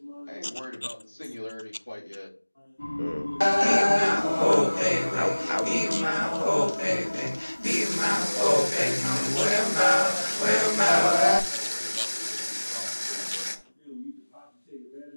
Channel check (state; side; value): inverted; both; correlation -1.00